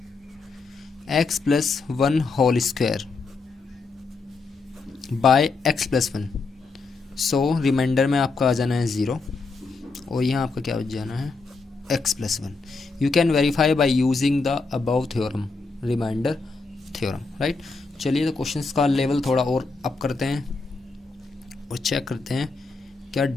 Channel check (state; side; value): quieter; right; 4.1 dB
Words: x plus 1 whole square by x plus 1, so remainder में आपका आ जाना है 0 और यहाँ आपका क्या हो जाना है x plus 1. You can verify by using the above theorem, remainder theorem, right. चलिए तो क्वेश्चंस का लेवल थोड़ा और अप करते हैं और चेक करते हैं क्या